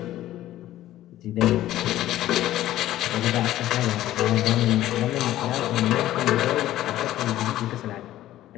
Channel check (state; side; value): quieter; right; 14.0 dB